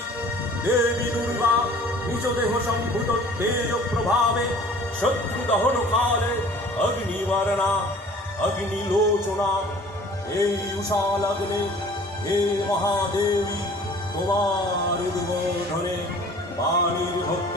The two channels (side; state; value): both; normal; correlation 0.49